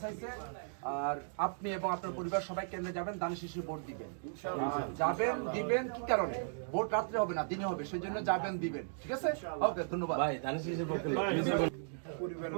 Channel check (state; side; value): silent; left; digital silence